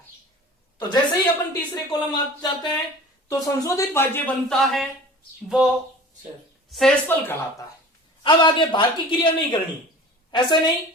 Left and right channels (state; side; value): normal; both; correlation 0.41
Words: तो जैसे ही अपन तीसरे कॉलम आ जाते हैं तो संशोधित भाज्य बनता है वो शेषफल कहलाता है। अब आगे भाग की क्रिया नहीं करनी, ऐसे नहीं